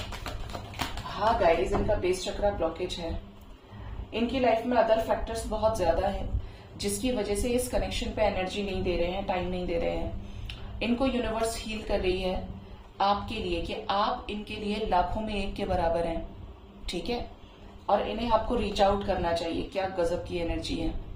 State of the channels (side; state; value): both; identical; correlation 1.00